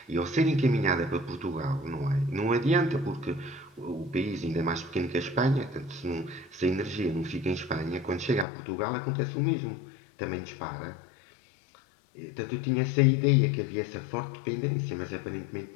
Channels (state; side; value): drops out; right; at 8.5 s